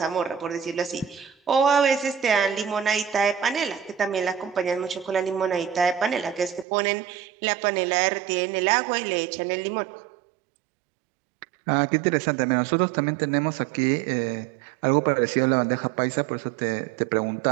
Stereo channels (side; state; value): left; drops out; at 6.7 s